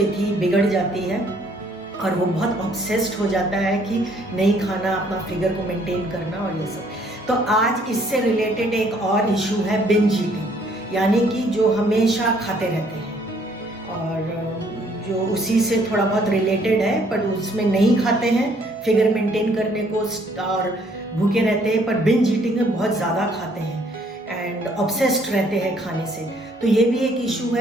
बिगड़ जाती है और वो बहुत ऑब्सेस्ड हो जाता है कि नहीं खाना, अपना फिगर को मेंटेन करना और ये सब। तो आज इससे रिलेटेड एक और इशू है बिंज ईटिंग, यानी कि जो हमेशा खाते रहते हैं और जो उसी से थोड़ा बहुत रिलेटेड है, पर उसमें नहीं खाते हैं फिगर मेंटेन करने को और भूखे रहते हैं, पर बिंज ईटिंग में बहुत ज़्यादा खाते हैं एंड ऑब्सेस्ड रहते हैं खाने से। तो ये भी एक इशू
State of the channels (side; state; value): both; normal; correlation 0.64